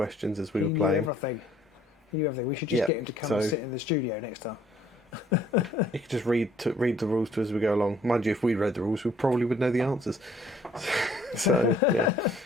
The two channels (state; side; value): normal; both; correlation 0.61